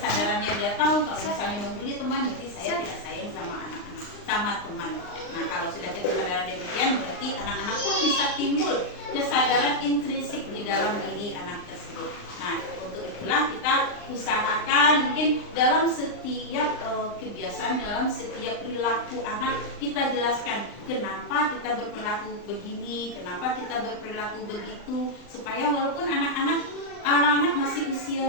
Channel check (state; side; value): late; right; 39 ms